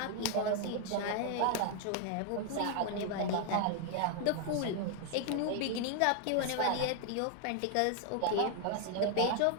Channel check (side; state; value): both; different; correlation 0.00